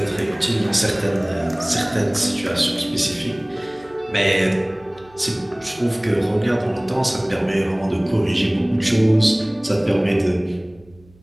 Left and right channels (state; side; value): noise; right; hum, 27 dB below the sound